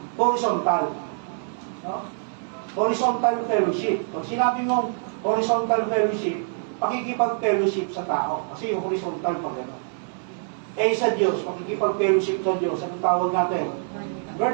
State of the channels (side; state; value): left; silent; 62 dB below the other